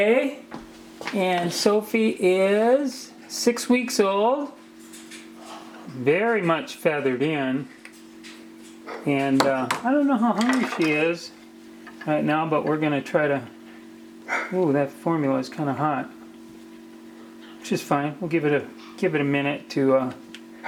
and Sophie is 6 weeks old, very much feathered in, and I don't know how hungry she is right now, but we're gonna try to. Ooh, that formula is kind of hot, which is fine. We'll give it a minute to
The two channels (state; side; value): identical; both; correlation 1.00